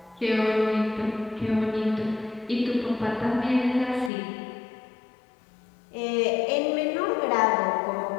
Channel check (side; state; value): right; drops out; at 4.1 s